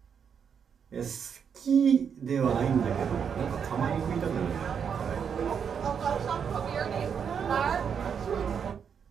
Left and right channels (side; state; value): left; quieter; 7.2 dB